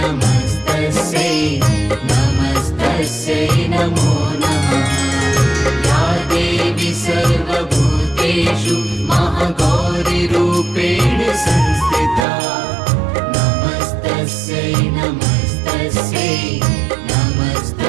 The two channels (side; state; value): left; drops out; at 12.2 s